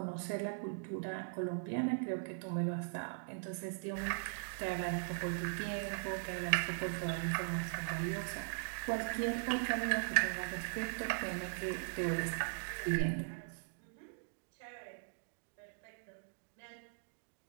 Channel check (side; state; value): left; silent; digital silence